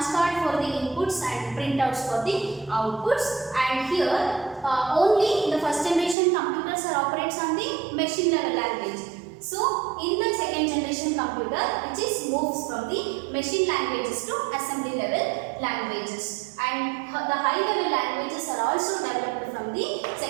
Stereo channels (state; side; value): drops out; left; at 6.2 s